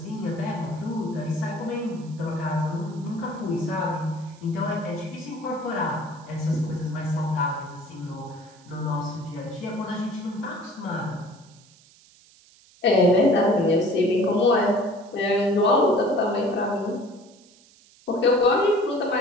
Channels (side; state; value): right; noise; hiss, 27 dB below the sound